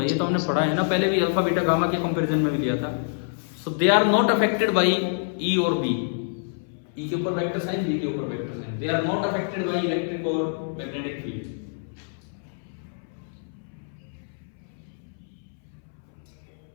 ये तो हमने पढ़ा है ना पहले भी, अल्फा बीटा गामा के कंपैरिजन में भी लिया था। So they are not affected by E और B। E के ऊपर वेक्टर साइन, B के ऊपर vector sine. They are not affected by electric और मैग्नेटिक फील्ड।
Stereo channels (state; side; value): silent; right; 61 dB below the other